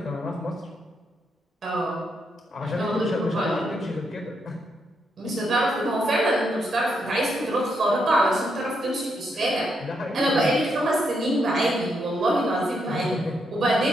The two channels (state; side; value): normal; both; correlation 0.79